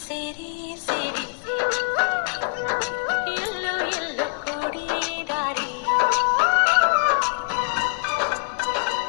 ಸೇರಿ ಸೇರಿ ಎಲ್ಲೋ ಎಲ್ಲೋ ಕೂಡಿ ದಾರಿ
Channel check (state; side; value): silent; right; digital silence